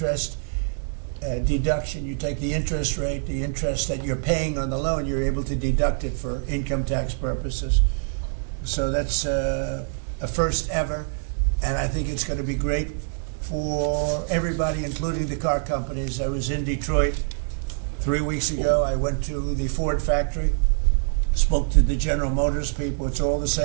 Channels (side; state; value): left; silent; 61 dB below the other